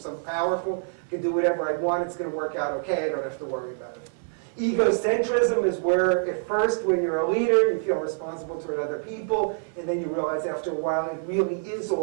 powerful, I can do whatever I want, it's going to work out okay, I don't have to worry about it. Egocentrism is where, at first, when you're a leader, you feel responsible toward other people, and then you realize after a while it really is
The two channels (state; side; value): silent; left; 61 dB below the other